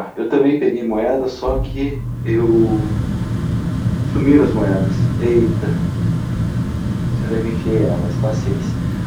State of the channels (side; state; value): both; identical; correlation 1.00